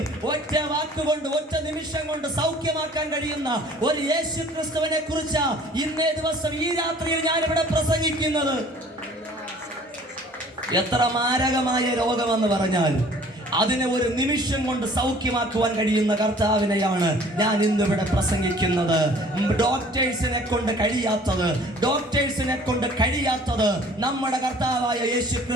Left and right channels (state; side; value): normal; both; correlation 0.52